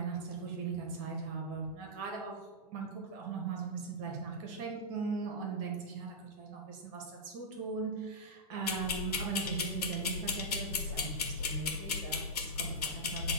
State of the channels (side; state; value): both; normal; correlation -0.11